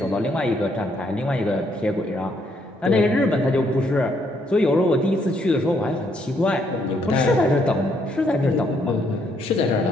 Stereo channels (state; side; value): normal; both; correlation 0.71